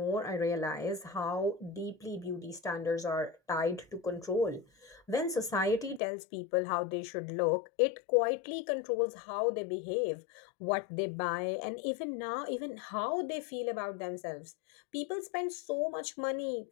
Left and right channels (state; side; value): drops out; right; at 6.0 s